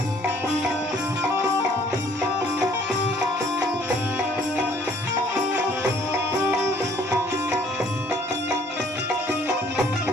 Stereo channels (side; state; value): both; normal; correlation 0.59